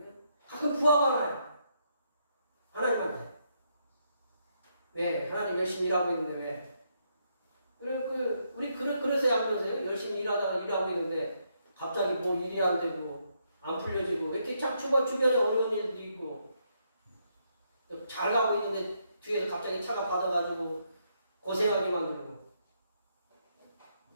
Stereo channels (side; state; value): both; inverted; correlation -0.77